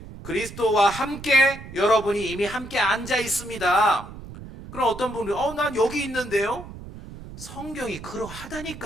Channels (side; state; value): right; noise; rumble, 14 dB below the sound